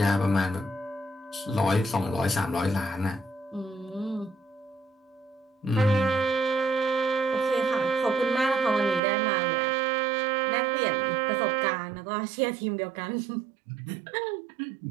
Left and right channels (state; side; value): drops out; left; at 9.0 s